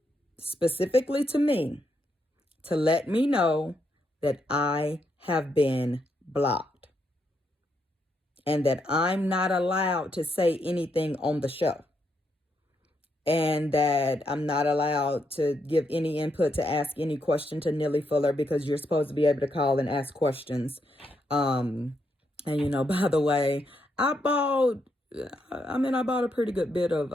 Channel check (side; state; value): both; normal; correlation 0.79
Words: Specifically to me, to let me know that I have been blocked and that I'm not allowed to say anything on the show, and that I'm not allowed to give any input, to ask any question to Neely Fuller, because you're supposed to be able to call and ask questions. And you know, by the way, I bought a pretty good bit of